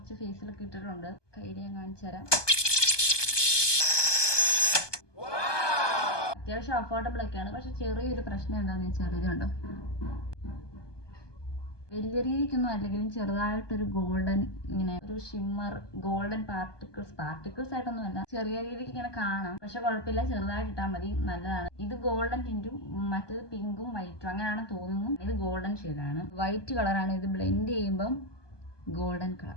ഫേസിലൊക്കെ ഇട്ടിട്ടുണ്ട്. കയ്യിൽ ഞാൻ കാണിച്ചു തരാം. അത്യാവശ്യം അഫോർഡബിൾ ഒക്കെയാണ്. പക്ഷെ ചെറിയൊരു പ്രശ്നം എന്താണെന്ന് വെച്ചാൽ ഇത് കണ്ടോ, വലിയ രീതിക്കൊന്നും അല്ലെങ്കിലും ചെറുതായിട്ടൊരു ഗോൾഡൻ, ഇങ്ങനെ ഒരു ഷിമ്മർ ഗോൾഡൻ പാർട്ടിക്കിൾസ് ആയിട്ടൊന്നും അല്ല, ചെറിയ രീതിക്ക് ഇങ്ങനെ കാണാം. പക്ഷെ കുഴപ്പമില്ല, ചെറുതായിട്ട് ഇട്ടാൽ മതി, നല്ലതാണ്. ഇത് ഗോൾഡൻ ടിന്റും മറ്റേത് പിങ്കും വൈറ്റും അങ്ങനെയാണെന്ന് തോന്നുന്നു. ഇത് ഗോൾഡൻ ഷെയ്ഡാണ്, വൈറ്റ് കളറാണ്. ഇത് ബ്ലെൻഡ് ചെയ്യുമ്പം ഗോൾഡൻ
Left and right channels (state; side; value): late; right; 1.2 ms